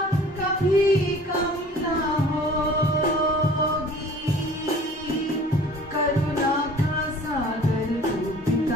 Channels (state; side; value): normal; both; correlation 0.48